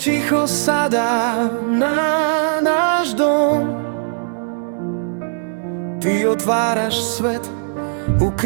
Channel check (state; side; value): silent; left; 60 dB below the other